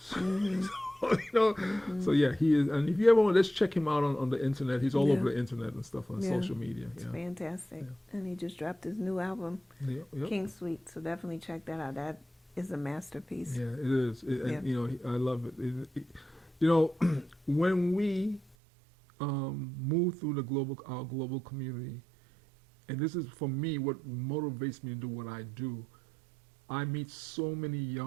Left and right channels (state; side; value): drops out; left; at 18.6 s